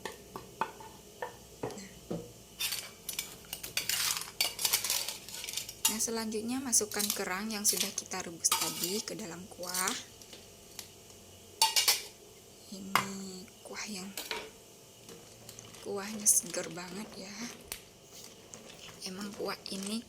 Nah, selanjutnya masukkan kerang yang sudah kita rebus tadi ke dalam kuah. Ini kuahnya seger banget ya. Emang kuah ini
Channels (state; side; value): identical; both; correlation 1.00